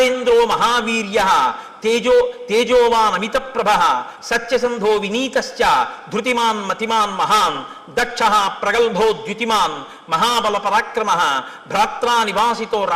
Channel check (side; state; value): both; identical; correlation 1.00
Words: మహావీర్య తేజోవాన్ అమిత ప్రభ సత్యసంధో వినీతశ్చ ధృతిమాన్ మతిమాన్ మహాన్ దక్ష ప్రగల్భో ద్యుతిమాన్ మహాబల పరాక్రమ భ్రాత్రా నివాసితో